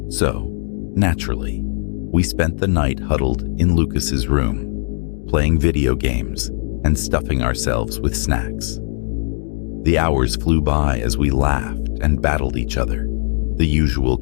So, naturally, we spent the night huddled in Lucas's room, playing video games and stuffing ourselves with snacks. The hours flew by as we laughed and battled each other, the usual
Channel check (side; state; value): right; silent; 57 dB below the other